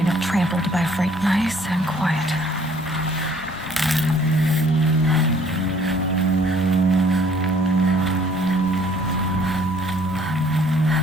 up trampled by a freight. Nice and quiet.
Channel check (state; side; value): normal; both; correlation 0.58